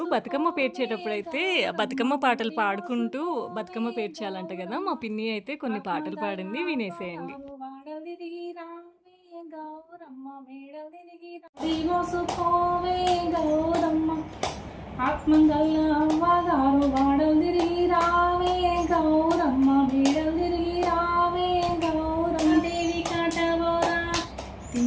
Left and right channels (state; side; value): identical; both; correlation 1.00